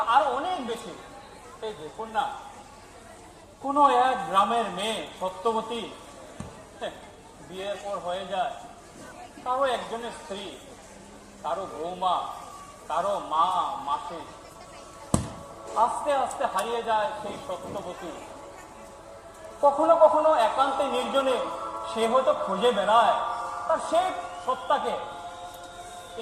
আরো অনেক বেশি। এই দেখুন না, কোনো এক গ্রামের মেয়ে সত্যবতী বিয়ের পর হয়ে যায়, কারো একজনের স্ত্রী, কারো বৌমা, কারো মা, মাসি। আস্তে আস্তে হারিয়ে যায় সেই সত্যবতী। কখনো কখনো একান্তে নির্জনে সে হয়তো খুঁজে বেড়ায় তার সেই সত্তাকে,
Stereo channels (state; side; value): identical; both; correlation 1.00